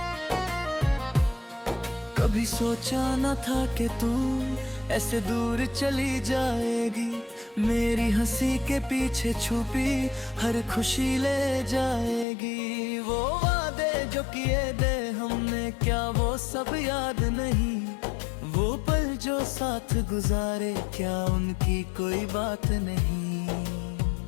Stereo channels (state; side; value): drops out; right; at 12.2 s